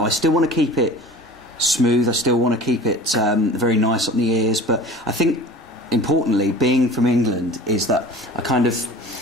I still want to keep it smooth. I still want to keep it very nice on the ears. But I think importantly, being from England, is that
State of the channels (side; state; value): both; normal; correlation 0.41